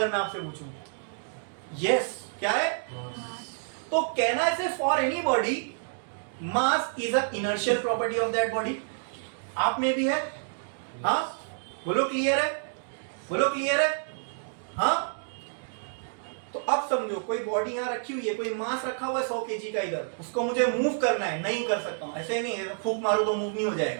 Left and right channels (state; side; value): silent; left; digital silence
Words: मैं आपसे पूछूं, यस, क्या है? तो कहना है for any body mass is a inertial property of that body. आप में भी है? हाँ, बोलो क्लियर है? बोलो क्लियर है? हाँ। तो अब समझो, कोई बॉडी यहां रखी हुई है, कोई मास रखा हुआ है 100 केजी का इधर, उसको मुझे मूव करना है, नहीं कर सकता हूं। ऐसे नहीं है फूंक मारो तो मूव नहीं हो